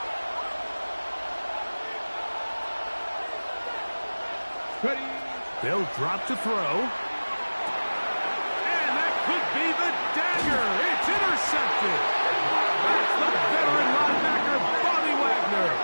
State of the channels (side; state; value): both; inverted; correlation -1.00